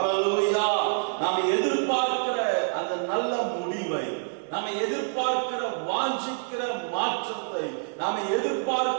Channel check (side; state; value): left; silent; digital silence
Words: நாம் எதிர்பார்க்கிற அந்த நல்ல முடிவை, நாம் எதிர்பார்க்கிற வாஞ்சிக்கிற மாற்றத்தை, நாம்